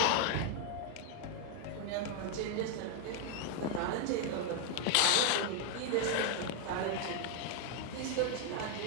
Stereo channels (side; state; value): both; different; correlation 0.01